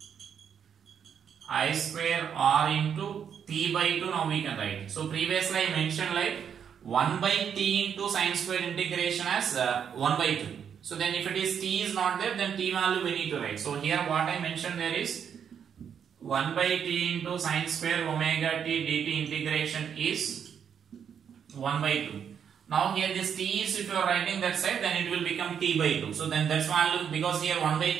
I square R into t by 2. Now we can write. So previously I mentioned like 1 by t into sine square integration as 1 by 2. So then if it is t is not there, then t value we need to write. So here what I mentioned there is 1 by t into sine square omega t dt integration is 1 by 2. Now here this t is, if you are writing that side, then it will become t by 2. So then that's value, because here 1 by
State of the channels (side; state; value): left; quieter; 7.9 dB